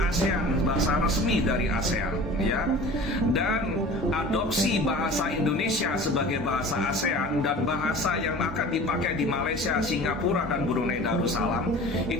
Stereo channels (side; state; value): both; normal; correlation 0.40